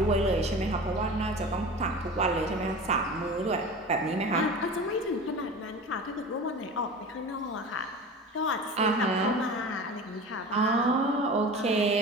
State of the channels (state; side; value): normal; both; correlation 0.34